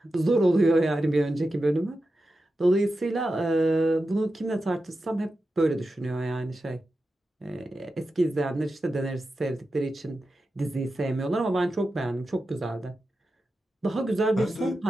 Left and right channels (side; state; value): both; normal; correlation 0.91